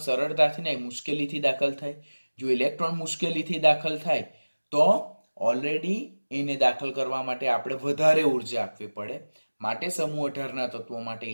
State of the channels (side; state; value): both; inverted; correlation -1.00